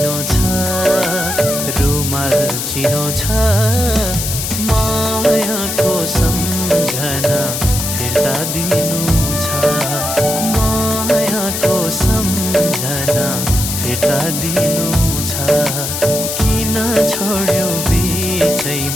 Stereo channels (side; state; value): left; noise; hiss, 3 dB below the sound